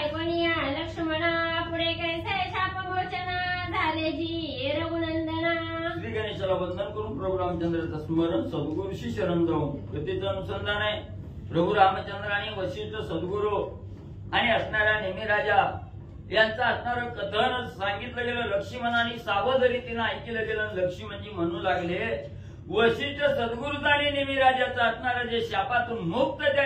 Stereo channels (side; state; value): both; identical; correlation 1.00